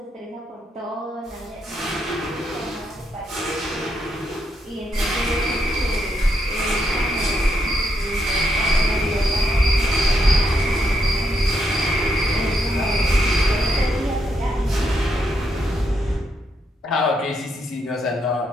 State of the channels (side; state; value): both; normal; correlation 0.78